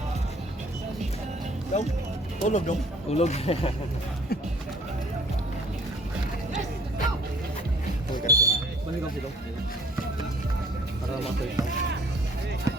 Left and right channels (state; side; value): normal; both; correlation 0.55